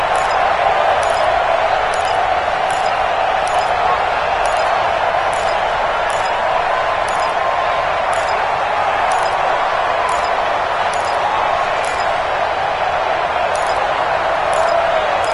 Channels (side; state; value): both; identical; correlation 1.00